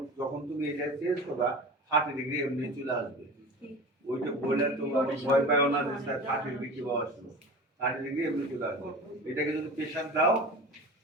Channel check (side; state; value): both; normal; correlation 0.34